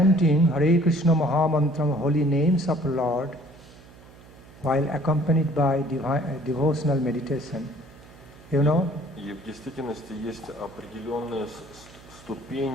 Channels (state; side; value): noise; right; hum, 22 dB below the sound